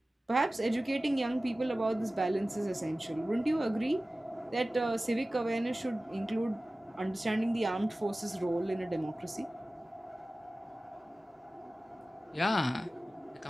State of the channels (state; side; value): normal; both; correlation 0.97